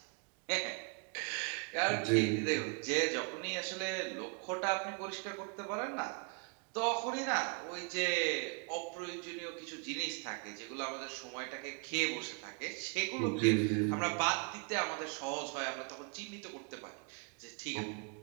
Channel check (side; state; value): left; quieter; 36.2 dB